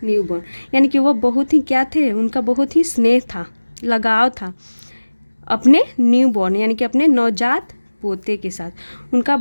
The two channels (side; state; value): both; inverted; correlation -1.00